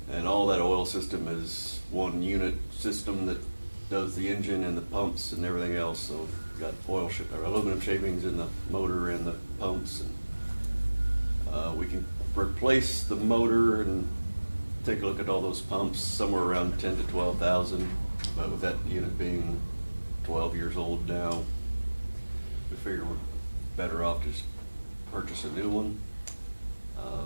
And all that oil system is one unit system that does the engine and the pumps and everything else. So we've got aluminum shavings in the motor and the pumps, and we can replace the motor and take a look at all those pumps, somewhere around 10 to 12,000. But with that unit being 12 years old now, we figure we're better off just purchase a new one.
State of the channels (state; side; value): inverted; both; correlation -1.00